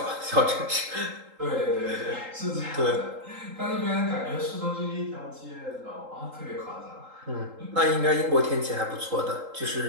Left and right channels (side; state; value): left; late; 3.8 ms